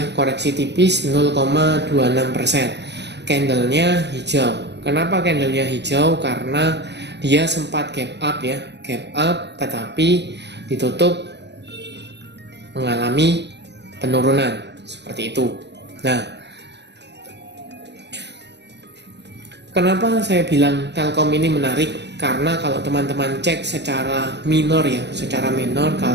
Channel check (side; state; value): left; late; 0.50 ms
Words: koreksi tipis 0,26%. Candlenya hijau. Kenapa candlenya hijau? Karena dia sempat gap up ya, gap up tetapi ditutup mengalami penurunan seperti itu. Nah, kenapa saya bilang Telkom ini menarik? Karena kalau teman-teman cek secara minor ya, secara minor,